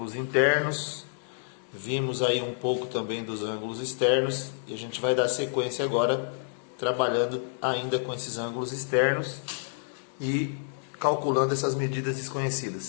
internos, vimos aí um pouco também dos ângulos externos e a gente vai dar sequência agora trabalhando ainda com esses ângulos externos e calculando essas medidas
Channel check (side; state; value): right; silent; digital silence